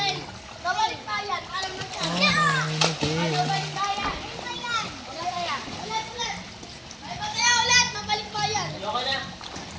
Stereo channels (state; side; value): identical; both; correlation 1.00